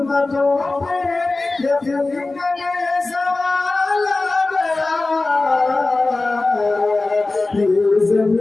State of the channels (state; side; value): quieter; right; 3.3 dB